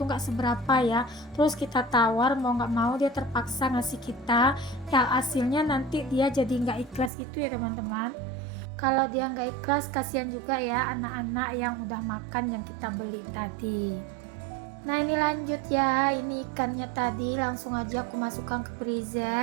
nggak seberapa ya. Terus kita tawar mau nggak mau dia terpaksa ngasih kita, ya hasilnya nanti dia jadi nggak ikhlas gitu ya teman-teman. Kalau dia nggak ikhlas, kasihan juga ya anak-anak yang udah makan yang kita beli tadi. Nah, ini lanjut ya, ini ikannya tadi langsung aja aku masukkan ke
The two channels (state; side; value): drops out; left; at 7.1 s